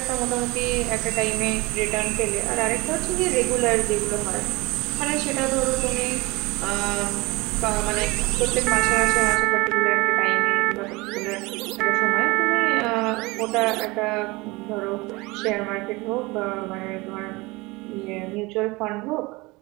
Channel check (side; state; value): left; quieter; 23.4 dB